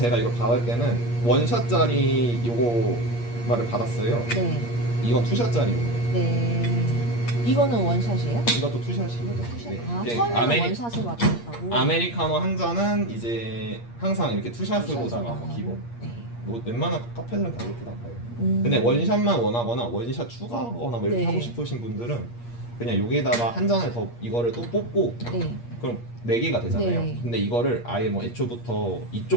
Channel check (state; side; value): late; right; 8.5 ms